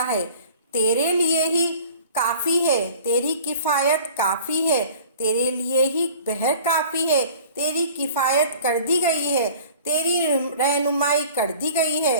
ہے، تیرے لیے ہی کافی ہے، تیری کفایت کافی ہے، تیرے لیے ہی بہر کافی ہے، تیری کفایت کر دی گئی ہے، تیری رہنمائی کر دی گئی ہے،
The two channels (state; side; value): inverted; both; correlation -0.47